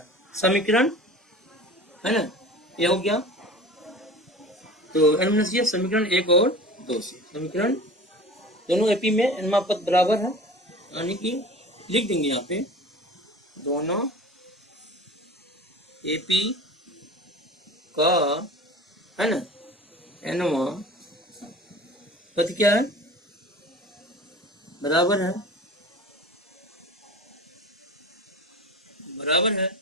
समीकरण है ना, ये हो गया। तो ये समीकरण 1 और 2 से समीकरण दोनों एपी में n पद बराबर है, यानी कि लिख देंगे यहाँ पे दोनों एपी का, है ना, एनवा पद क्या है, बराबर है, बराबर है,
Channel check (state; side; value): normal; both; correlation 0.39